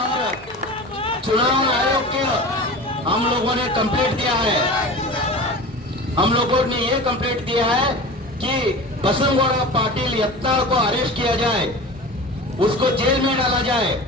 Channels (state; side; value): normal; both; correlation 0.34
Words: चुनाव आयोग के हम लोगों ने कंप्लेंट दिया है। हम लोगों ने ये कंप्लेंट दिया है कि बसंगौड़ा पाटिल यत्नाल को अरेस्ट किया जाए, उसको जेल में डाला जाए।